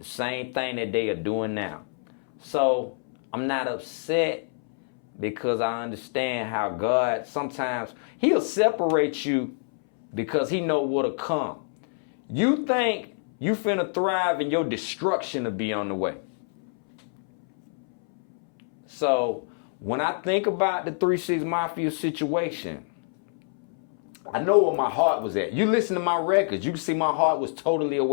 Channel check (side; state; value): right; silent; 61 dB below the other